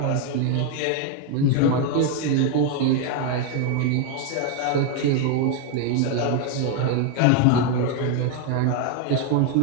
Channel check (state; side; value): different; both; correlation 0.01